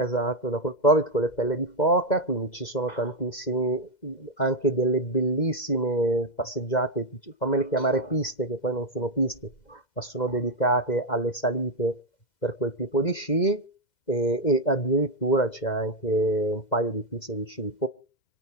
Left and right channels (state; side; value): late; right; 2.0 ms